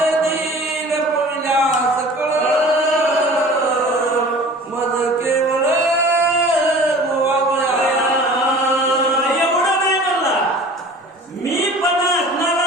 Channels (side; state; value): both; normal; correlation 0.43